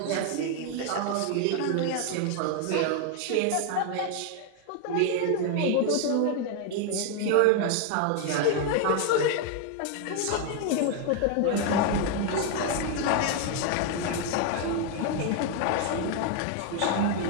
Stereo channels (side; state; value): both; different; correlation 0.01